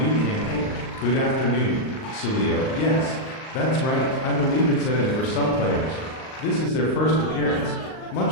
campaign. Good afternoon, Sadio. Yes, that's right, I believe it's in for some players. This is their first appearance,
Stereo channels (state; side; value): late; right; 38 ms